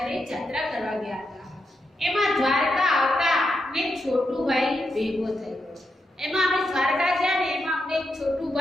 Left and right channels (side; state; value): both; normal; correlation 0.84